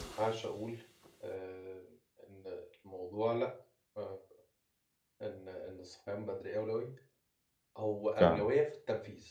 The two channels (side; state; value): both; identical; correlation 1.00